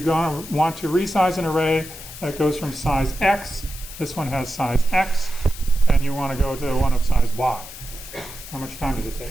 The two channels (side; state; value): left; noise; hiss, 14 dB below the sound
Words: want to resize an array that goes from size X, this one has size X, and you want to go to one of size Y? How much time does it